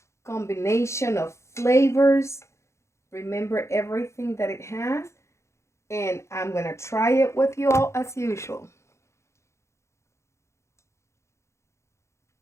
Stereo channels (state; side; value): late; right; 0.14 ms